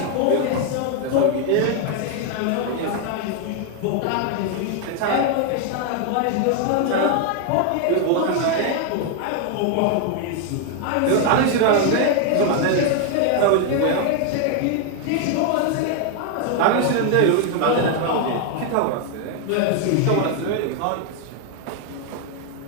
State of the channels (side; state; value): both; different; correlation 0.00